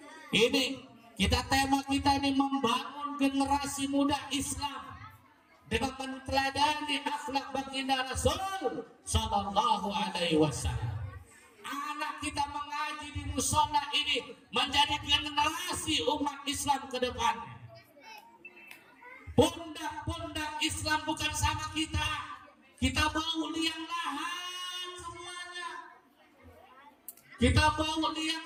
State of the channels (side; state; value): both; identical; correlation 1.00